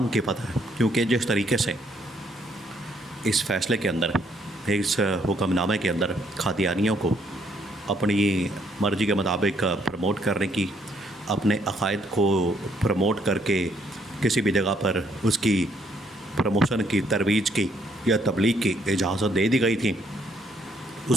کی فتح، کیونکہ جس طریقے سے اس فیصلے کے اندر، اس حکم نامے کے اندر قادیانیوں کو اپنی مرضی کے مطابق پروموٹ کرنے کی، اپنے عقائد کو پروموٹ کر کے کسی بھی جگہ پر اس کی پروموشن کی، ترویج کی یا تبلیغ کی اجازت دے دی گئی تھی،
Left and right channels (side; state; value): both; normal; correlation 0.69